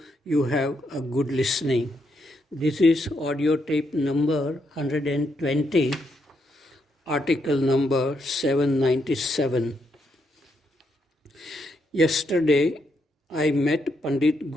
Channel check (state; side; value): normal; both; correlation 0.78